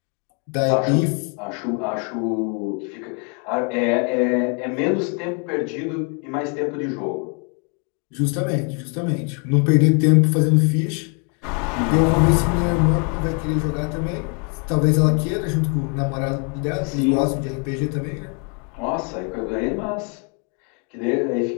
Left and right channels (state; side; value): quieter; right; 36.8 dB